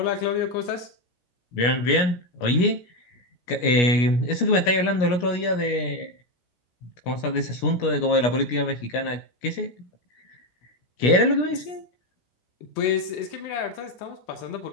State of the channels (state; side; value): late; right; 17 ms